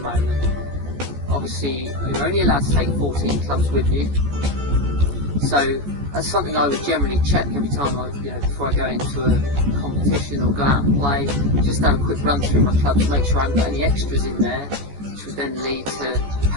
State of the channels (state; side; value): late; left; 14 ms